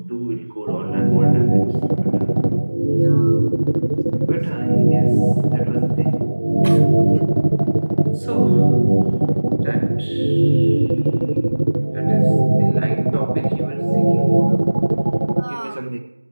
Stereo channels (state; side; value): inverted; both; correlation -1.00